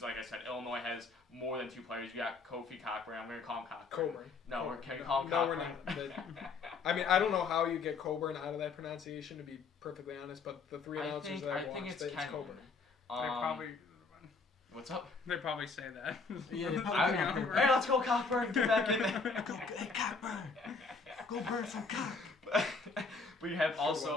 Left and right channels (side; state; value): right; quieter; 4.5 dB